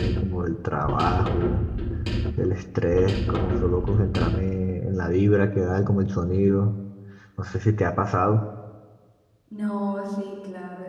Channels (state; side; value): identical; both; correlation 1.00